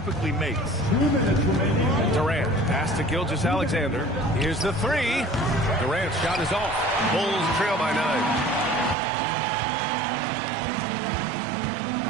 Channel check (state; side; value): drops out; left; at 9.0 s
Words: makes. Durant pass to Gilgeous-Alexander. Here's the three. Durant's shot is off. Bulls trail by 9.